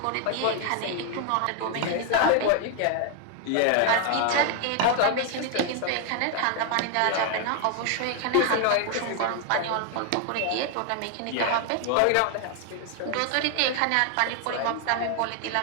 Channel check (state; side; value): different; both; correlation 0.00